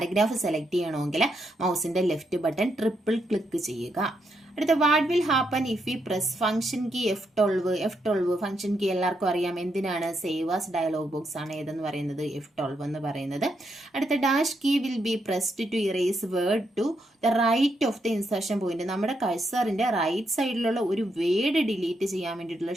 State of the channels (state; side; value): normal; both; correlation 0.80